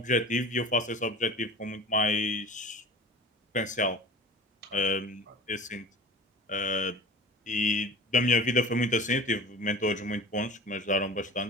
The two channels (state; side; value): normal; both; correlation 0.38